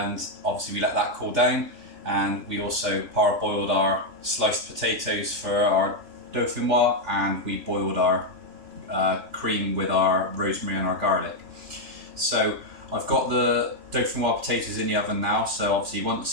obviously we let that cool down, and we also parboiled our sliced potatoes for our dauphinoise, and we boiled our cream with our rosemary and our garlic. So I've got the dauphinoise potatoes in the oven now, so obviously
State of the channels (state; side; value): late; left; 3.4 ms